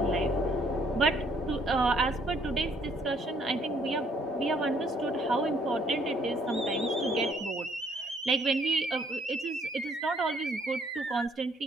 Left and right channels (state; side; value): normal; both; correlation 0.65